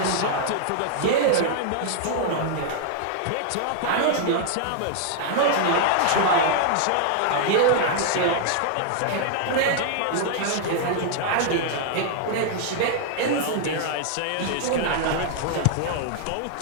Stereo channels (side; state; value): both; different; correlation -0.01